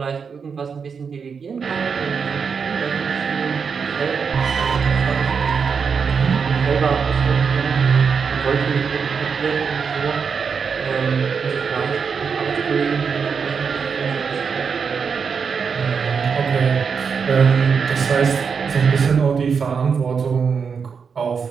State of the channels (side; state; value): left; quieter; 6.0 dB